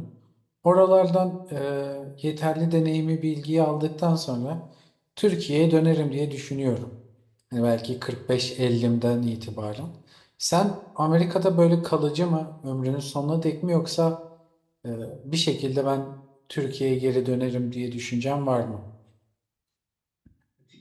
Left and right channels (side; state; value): both; identical; correlation 1.00